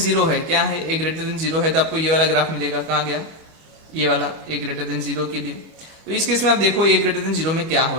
है, क्या है, ए ग्रेटर देन जीरो है, तो आपको ये वाला ग्राफ मिलेगा, कहाँ गया ये वाला, ए ग्रेटर देन जीरो के लिए। तो इस केस में आप देखो ए ग्रेटर देन जीरो में क्या हो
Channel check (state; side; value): late; left; 25 ms